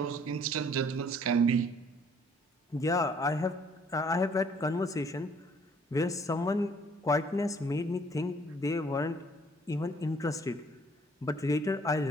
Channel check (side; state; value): both; normal; correlation 0.60